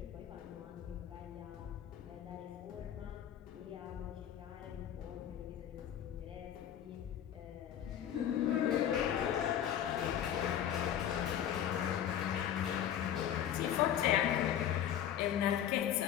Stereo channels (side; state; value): right; quieter; 10.2 dB